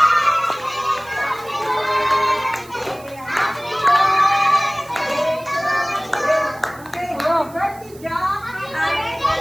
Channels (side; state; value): right; noise; hiss, 23 dB below the sound